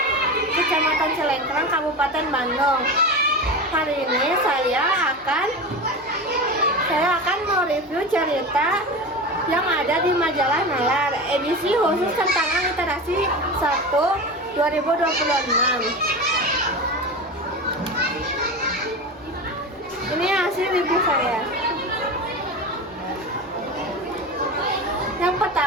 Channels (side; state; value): both; normal; correlation 0.26